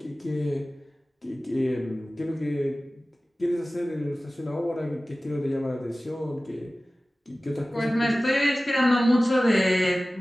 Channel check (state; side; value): normal; both; correlation 0.97